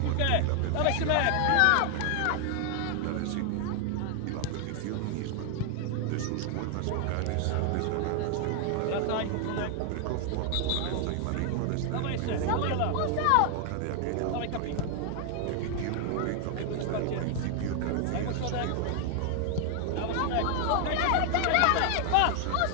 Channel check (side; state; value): both; different; correlation 0.00